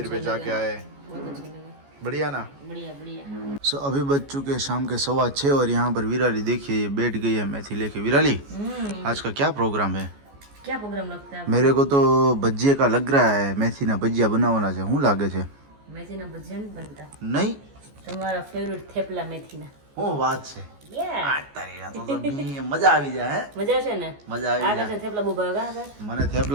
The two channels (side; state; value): left; late; 14 ms